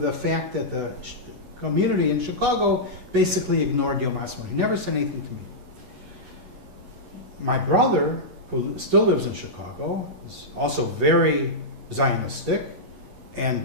fact that the community in Chicago basically ignored Yom Ha'atzmaut. He never said anything to me. My brother, who still lives in Chicago, is also very Zionistic, and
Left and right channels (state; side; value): late; left; 11 ms